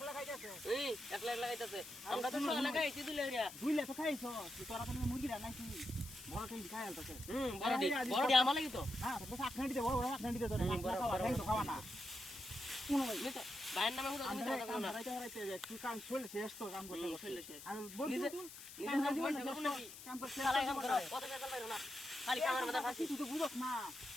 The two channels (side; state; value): left; noise; hiss, 14 dB below the sound